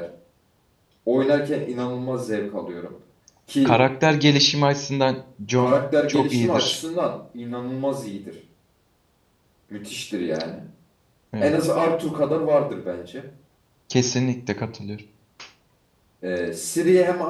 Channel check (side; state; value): both; identical; correlation 1.00